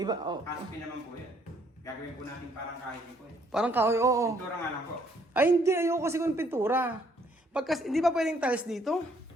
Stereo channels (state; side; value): normal; both; correlation 0.66